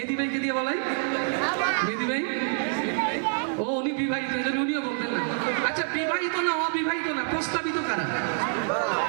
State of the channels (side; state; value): left; silent; digital silence